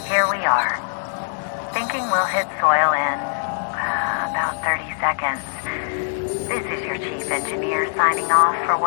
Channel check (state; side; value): silent; right; digital silence